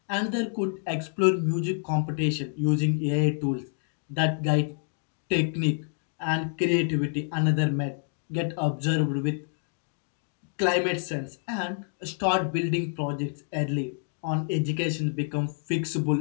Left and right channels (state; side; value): silent; right; digital silence